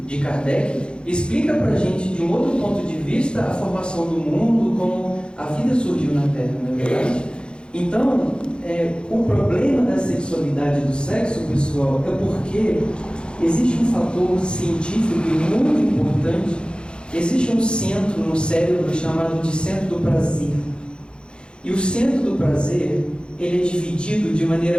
de Kardec, explica para a gente de um outro ponto de vista a formação do mundo, como a vida surgiu na Terra, não é verdade? Então, o problema da sexualidade e do sexo, pessoal, é porque existe um fator científico muito importante. Existe um centro no cérebro chamado de centro do prazer. E o centro do prazer, ele é dividido de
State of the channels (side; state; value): right; late; 0.052 ms